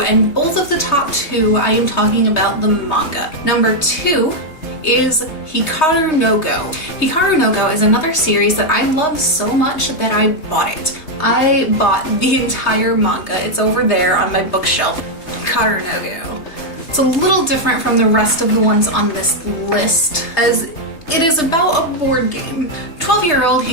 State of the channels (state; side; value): late; right; 3.3 ms